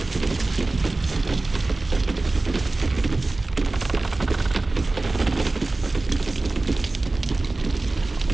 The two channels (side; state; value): left; quieter; 3.2 dB